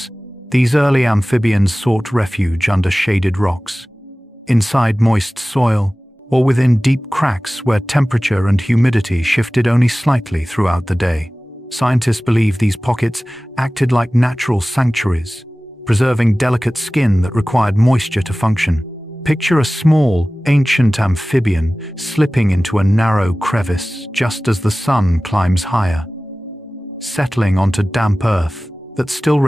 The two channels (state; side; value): normal; both; correlation 0.97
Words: these early amphibians sought refuge under shaded rocks, inside moist soil, or within deep cracks where temperature and humidity shifted only slightly throughout the day. Scientists believe these pockets acted like natural sanctuaries, preserving delicate skin that required moisture to function. Picture a small, ancient amphibian slipping into a narrow crevice just as the sun climbs higher, settling onto damp earth that still